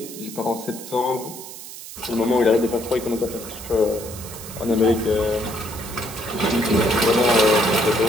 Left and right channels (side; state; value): right; noise; hiss, 13 dB below the sound